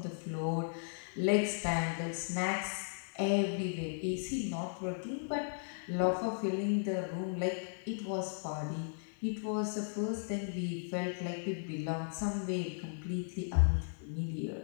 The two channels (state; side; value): silent; right; digital silence